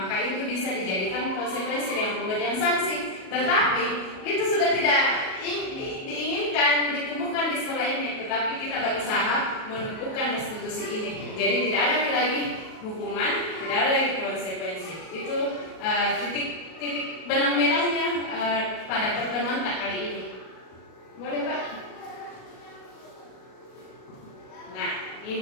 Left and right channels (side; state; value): right; late; 37 ms